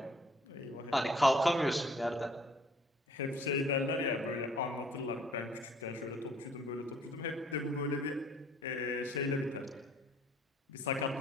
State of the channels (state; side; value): normal; both; correlation 0.58